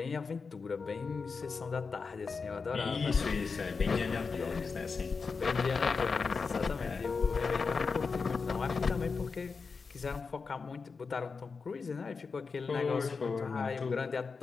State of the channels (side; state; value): right; quieter; 4.9 dB